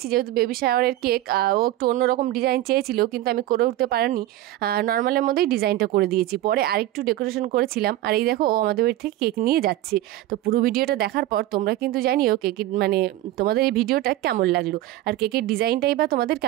যেহেতু বেবি শাওয়ারের কেক, ও একটু অন্যরকম ডিজাইন চেয়েছিল কিন্তু আমি করে উঠতে পারিনি, নর্মালের মধ্যেই ডিজাইনটা করে দিয়েছি। পরে আরেকটু ডেকোরেশন করেছিলাম। আর এই দেখো ও আমাদের বাড়ি থেকে কেক নিয়ে যাচ্ছে। তো পুরো ভিডিওটা দেখার পর তোমরা কিন্তু জানিও কেকের মানে তোমাদের এই ভিডিওটা কেমন লাগলো, আর কেকের ডিজাইনটাই বা তোমাদের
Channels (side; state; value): left; quieter; 15.0 dB